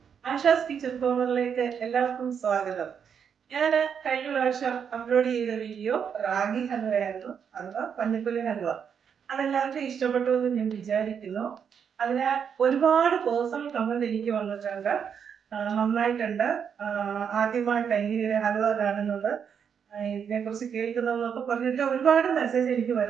Asha's kitchen കോർണറിലേക്ക് എല്ലാവർക്കും സ്വാഗതം. ഞാൻ കഴിഞ്ഞ പ്രാവശ്യം അപ്ലോഡ് ചെയ്ത വീഡിയോ റാഗി ഹൽവയായിരുന്നു, അഥവാ പഞ്ഞപ്പുല്ല് ഹൽവ. അതെല്ലാവർക്കും ഇഷ്ടപ്പെട്ടു എന്ന് ഞാൻ വിചാരിക്കുന്നു. അതിനാൽ ഒരുപാട് പേഴ്സണൽ കമന്റ് എനിക്ക് വന്നിട്ടുണ്ട്. നന്നായിട്ടുണ്ട്, ആദ്യമായിട്ട് എങ്ങനെ ഹൽവ കാണുന്നത്, ഇതിനെക്കുറിച്ച് കേൾക്കുന്നതെന്നൊക്കെ പറഞ്ഞിട്ട് ഒരുപാട് മെസ്സേജ് എനിക്ക്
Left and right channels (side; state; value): left; quieter; 7.4 dB